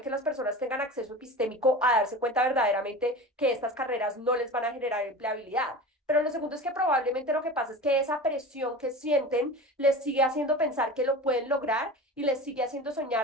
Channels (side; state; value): both; normal; correlation 0.33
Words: que las personas tengan acceso epistémico a darse cuenta verdaderamente que estas carreras no les van a generar empleabilidad. Pero lo segundo es que probablemente lo que pasa es que esa presión que sienten les sigue haciendo pensar que lo pueden lograr y les sigue haciendo